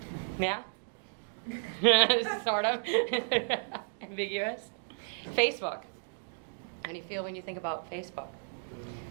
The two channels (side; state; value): left; silent; digital silence